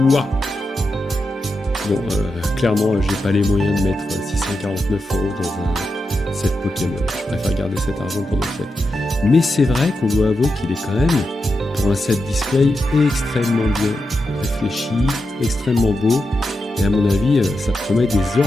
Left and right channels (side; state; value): both; normal; correlation 0.88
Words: Waouh! Bon, clairement, j'ai pas les moyens de mettre 649 € dans un set Pokémon. Je préfère garder cet argent pour d'autres fêtes. Mais c'est vrai qu'on doit avouer qu'il est quand même, pour un set display, extrêmement bien réfléchi, extrêmement beau. Et à mon avis, ça promet des